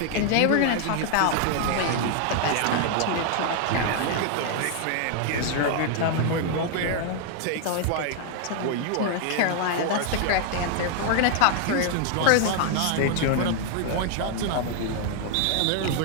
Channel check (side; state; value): both; different; correlation 0.00